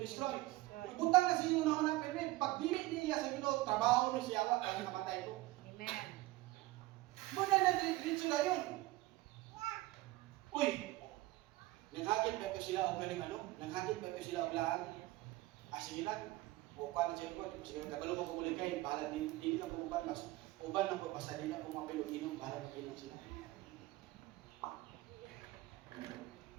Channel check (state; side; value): quieter; left; 18.7 dB